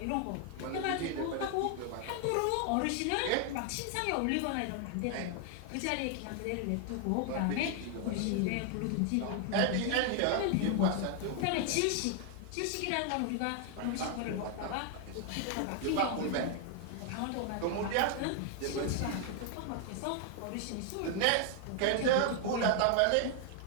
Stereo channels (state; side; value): different; both; correlation 0.00